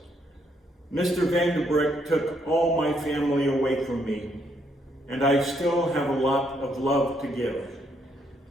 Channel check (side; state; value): both; normal; correlation 0.73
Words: "Mr. Vandebreck took all my family away from me, and I still have a lot of love to give.